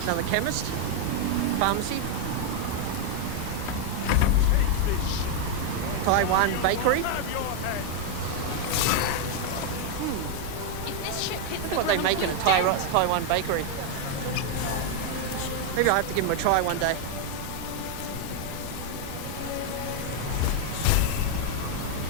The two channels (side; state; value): both; different; correlation 0.00